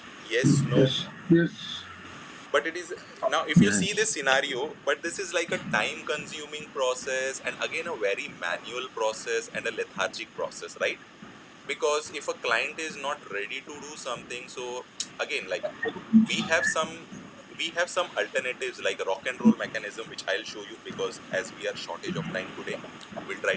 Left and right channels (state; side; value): identical; both; correlation 1.00